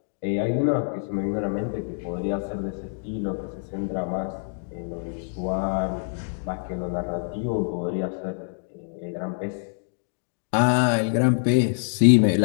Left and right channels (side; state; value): right; silent; digital silence